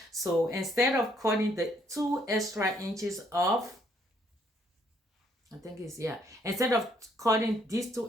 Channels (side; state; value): both; normal; correlation 0.68